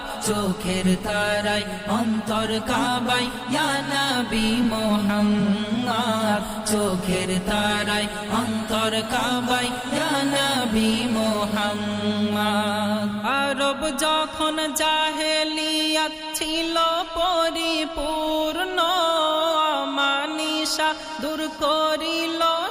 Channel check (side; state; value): both; identical; correlation 1.00